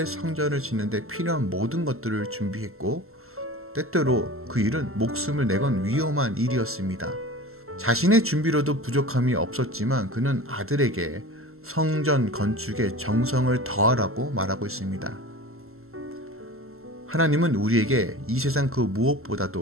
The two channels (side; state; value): left; late; 0.62 ms